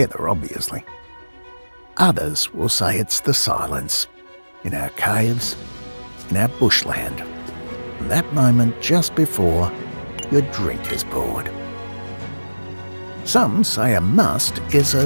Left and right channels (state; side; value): inverted; both; correlation -1.00